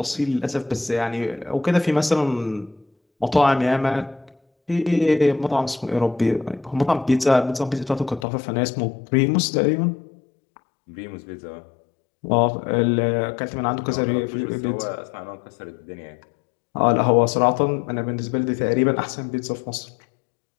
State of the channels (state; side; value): drops out; right; at 8.2 s